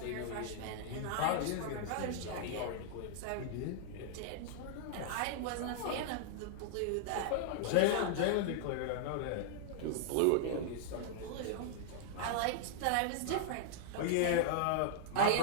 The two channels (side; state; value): both; different; correlation -0.01